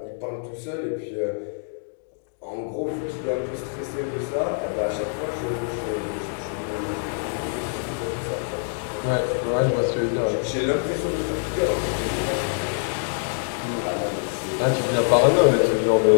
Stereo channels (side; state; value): right; silent; digital silence